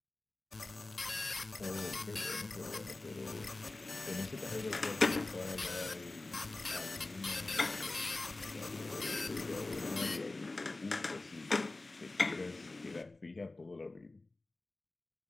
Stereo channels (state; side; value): quieter; right; 3.1 dB